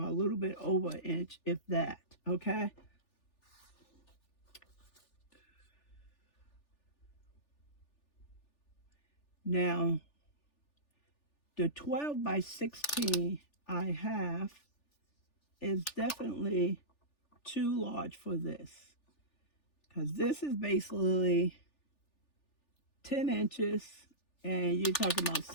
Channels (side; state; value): right; late; 3.4 ms